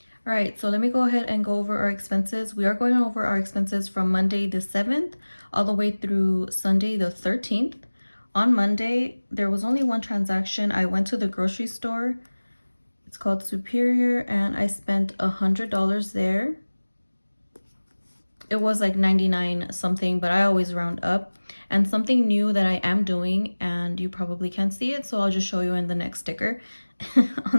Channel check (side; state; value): both; inverted; correlation -1.00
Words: All right, so let me go ahead and go over our expenses. We are going over our expenses from Monday the 7th all the way through Sunday the 13th. On Monday, there was only one transaction. I went to the grocery store. It's called Superior, and I spent $100 there. It was like 99 something, but I always round up. And something new that I am doing, and you probably can't see it, so I'll just show you in the next sticker.